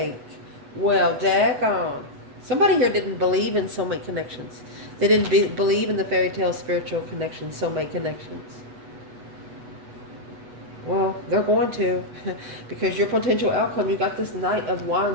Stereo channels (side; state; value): left; late; 8.1 ms